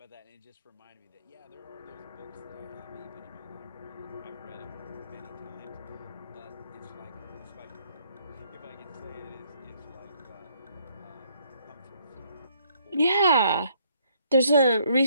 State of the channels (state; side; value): inverted; both; correlation -0.68